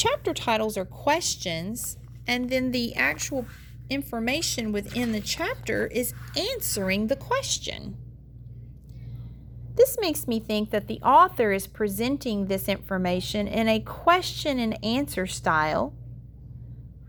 titles are questions, and then the actual information within the chapter is answering the question. This makes me think that the author is presenting this information in a question and answer style,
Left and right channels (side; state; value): both; identical; correlation 1.00